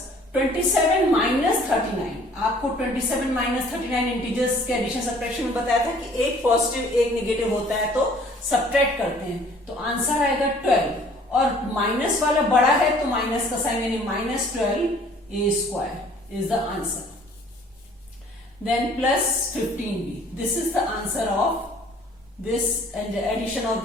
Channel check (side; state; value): both; normal; correlation 0.55